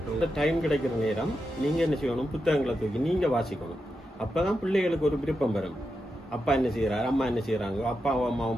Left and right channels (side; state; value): both; normal; correlation 0.87